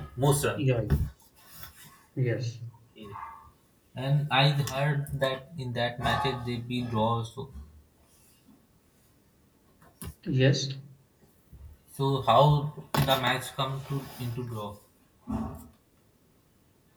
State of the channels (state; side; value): identical; both; correlation 1.00